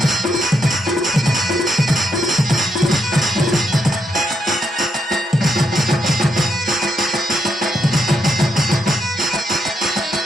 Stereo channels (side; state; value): both; normal; correlation 0.80